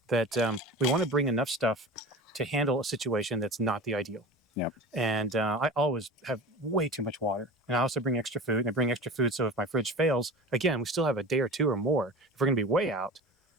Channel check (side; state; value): both; normal; correlation 0.34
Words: that we want to bring enough stuff to handle a situation that's not the ideal. Yep. And I always have way too much water, and I also bring extra food, and I bring extra food. So if my fridge fails, again, we still have a day or two or more. If we're going to be way out,